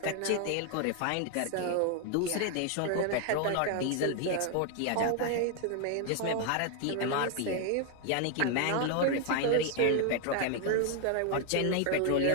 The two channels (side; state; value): both; different; correlation 0.00